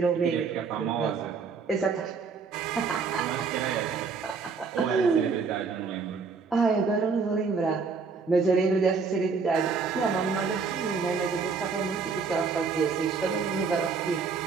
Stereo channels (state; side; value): quieter; left; 5.1 dB